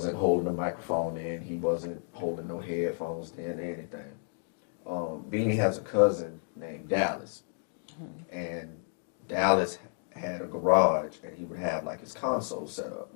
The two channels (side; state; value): right; silent; digital silence